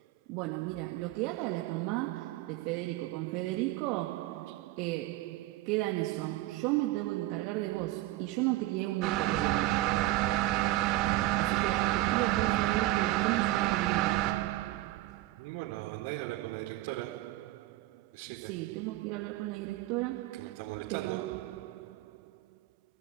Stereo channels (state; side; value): quieter; left; 16.9 dB